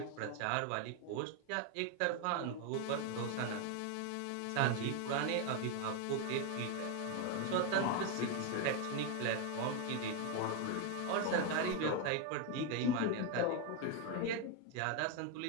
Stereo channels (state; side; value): different; both; correlation 0.01